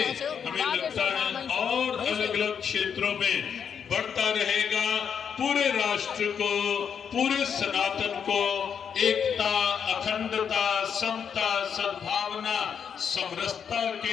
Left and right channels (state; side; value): quieter; right; 7.4 dB